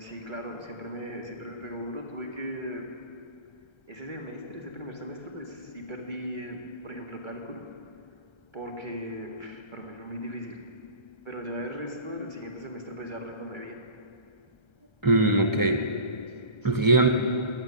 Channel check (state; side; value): late; right; 1.3 ms